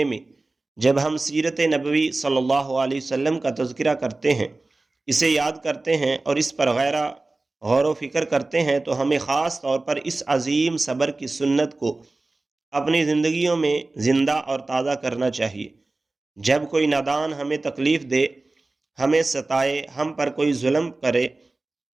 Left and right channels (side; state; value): left; quieter; 3.2 dB